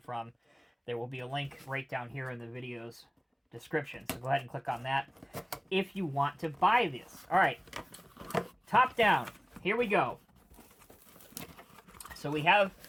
from. There will be a link right down here in the video's description. So go ahead and click on that if you want to buy this. All right, top down. Here we go. So we have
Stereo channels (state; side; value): identical; both; correlation 1.00